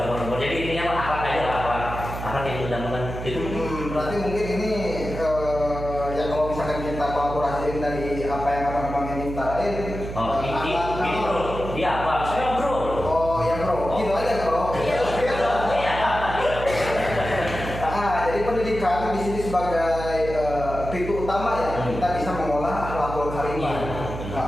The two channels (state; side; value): noise; right; hum, 8 dB below the sound